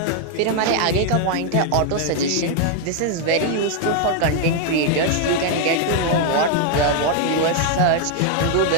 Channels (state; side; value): different; both; correlation 0.00